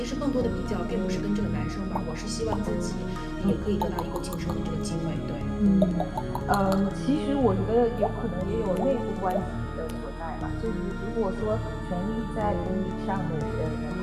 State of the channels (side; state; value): both; identical; correlation 1.00